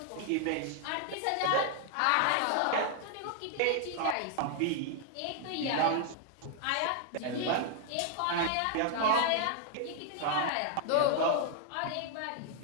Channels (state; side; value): different; both; correlation 0.00